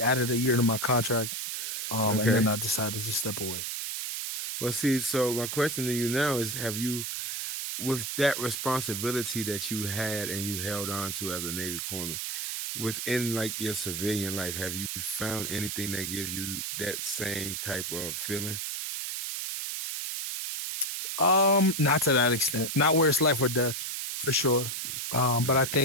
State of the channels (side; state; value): right; noise; hiss, 4 dB below the sound